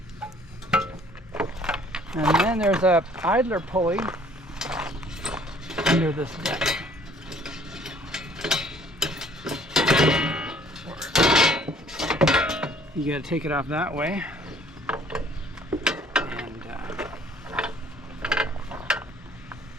And then there's a idler pulley under this deck. You gotta take it off that way. And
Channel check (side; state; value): both; normal; correlation 0.57